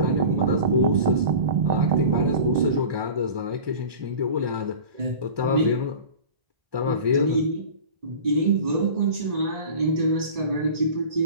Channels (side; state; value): left; late; 1.1 ms